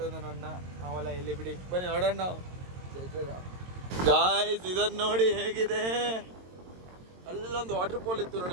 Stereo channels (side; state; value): left; late; 22 ms